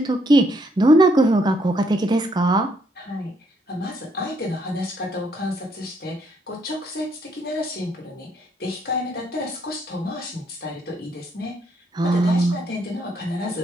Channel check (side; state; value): both; normal; correlation 0.71